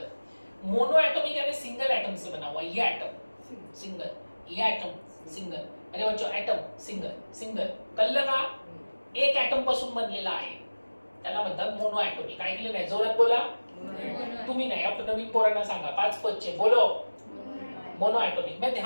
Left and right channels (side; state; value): both; inverted; correlation -1.00